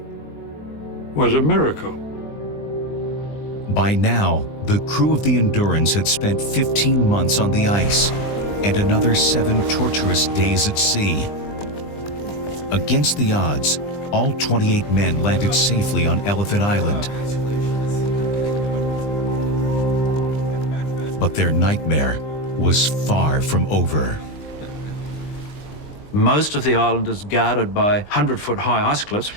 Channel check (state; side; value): late; right; 20 ms